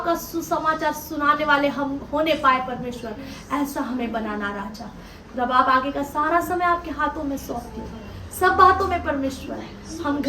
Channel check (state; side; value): identical; both; correlation 1.00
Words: सुसमाचार सुनाने वाले हम होने पाए परमेश्वर, ऐसा हमें बनाना राजा। जब आप आगे का सारा समय आपके हाथों में सौंपते हो, सब बातों में परमेश्वर हम